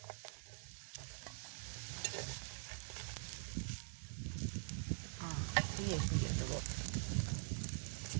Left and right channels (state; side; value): silent; left; digital silence